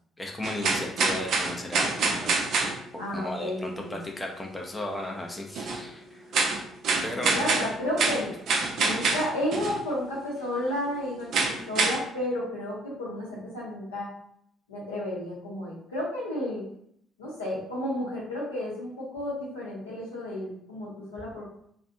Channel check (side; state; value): both; normal; correlation 0.60